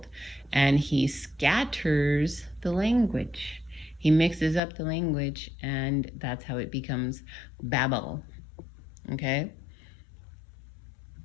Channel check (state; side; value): drops out; right; at 4.6 s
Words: and he scatters the language. He mixes up the language, and that's how it becomes Babel. Okay?